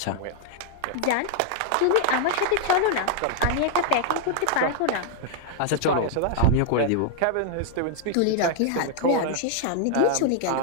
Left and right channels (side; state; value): both; different; correlation -0.01